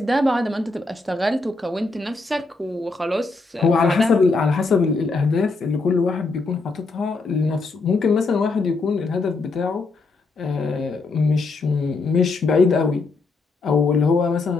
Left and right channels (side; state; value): right; quieter; 3.7 dB